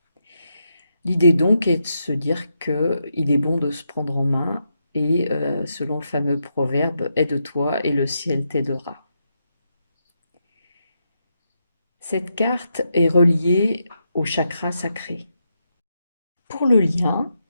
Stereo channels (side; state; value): both; inverted; correlation -0.83